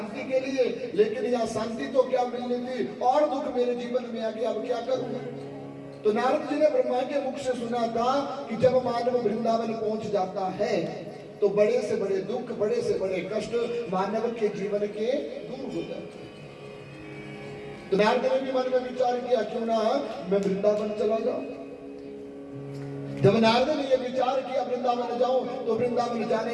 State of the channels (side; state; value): both; identical; correlation 1.00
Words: के लिए, लेकिन यह शांति तो क्या मिलनी थी, और दुख मेरे जीवन में आ गया, अब क्या करूं? तो नारद जी ने ब्रह्मा के मुख से सुना था कि जब मानव वृंदावन पहुंच जाता है तो बड़े से बड़े दुख, बड़े से बड़े कष्ट मानव के जीवन के दूर हो जाते हैं। तो नारद ने भी मन में विचार किया, क्यों ना मैं वृंदावन चला जाऊं। जब नारद ने यह विचार किया वृंदावन जाऊं, तो वृंदावन जाने